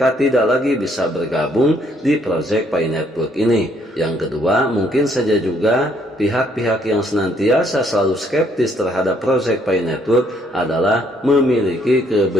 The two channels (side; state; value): both; normal; correlation 0.68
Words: tidak lagi bisa bergabung di proyek FI Network ini. Yang kedua, mungkin saja juga pihak-pihak yang senantiasa selalu skeptis terhadap proyek FI Network adalah memiliki